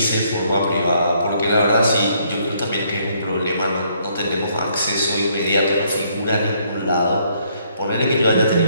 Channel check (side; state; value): both; inverted; correlation -0.69